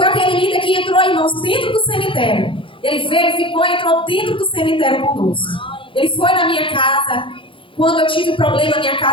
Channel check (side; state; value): right; late; 0.25 ms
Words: aquele líder que entrou, irmãos, dentro do cemitério. Ele veio, ficou, entrou dentro do cemitério conosco. Ele foi na minha casa. Quando eu tive um problema na minha